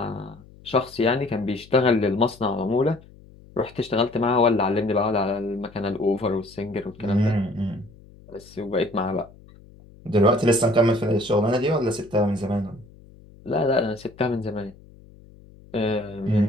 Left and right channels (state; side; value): noise; left; hum, 23 dB below the sound